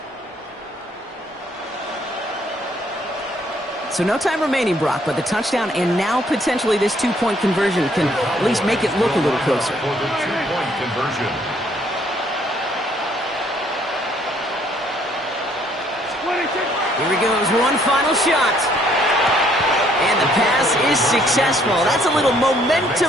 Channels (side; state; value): both; normal; correlation 0.65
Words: So no time remaining, Brock, but the touchdown and now potentially this 2-point conversion can at least make it look a little closer. For the 2-point conversion. Here he goes, one final shot. And the pass is successful. That's a little